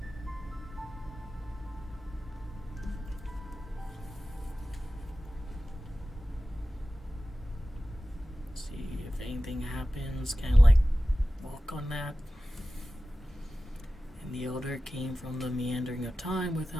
See if anything happens, kind of like walk on that. And the elder came from the meandering of time. With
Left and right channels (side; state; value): both; normal; correlation 0.95